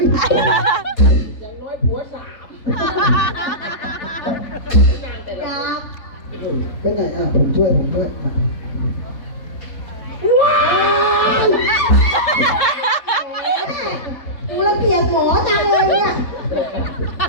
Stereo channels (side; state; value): right; late; 3.8 ms